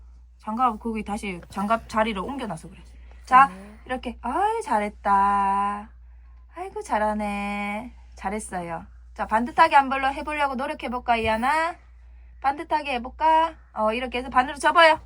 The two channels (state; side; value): identical; both; correlation 1.00